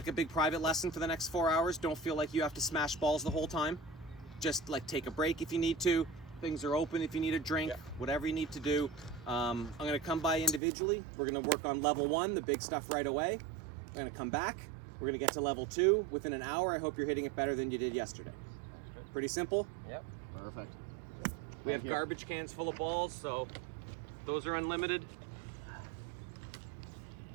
a big private lesson for the next 4 hours. Don't feel like you have to smash balls the whole time. Just like take a break if you need to. Things are open if you need a drink, whatever you need to do. I'm gonna come by individually. We're gonna work on level 1, the big stuff right away. I'm gonna come back. We're gonna get to level 2 within an hour. I hope you're hitting it better than you did yesterday. Pretty simple? Yep. Perfect. We have Thank you. garbage cans full of balls, so those are unlimited.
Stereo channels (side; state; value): left; drops out; at 10.6 s